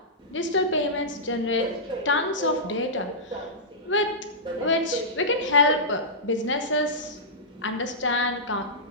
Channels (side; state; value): both; normal; correlation -0.15